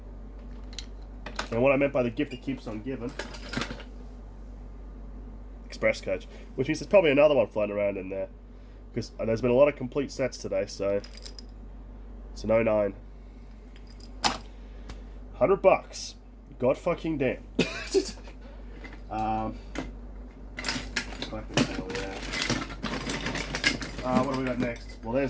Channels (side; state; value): both; identical; correlation 1.00